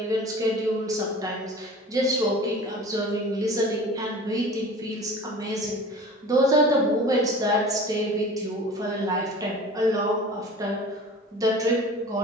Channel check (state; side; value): normal; both; correlation 0.40